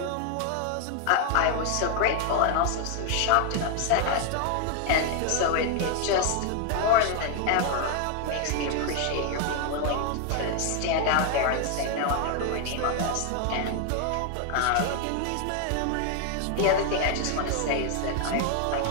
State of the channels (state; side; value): different; both; correlation 0.00